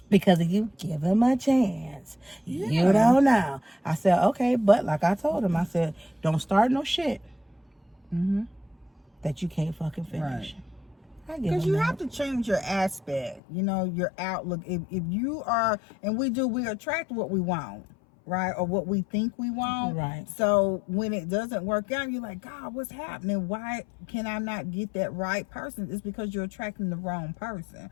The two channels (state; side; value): drops out; right; at 13.4 s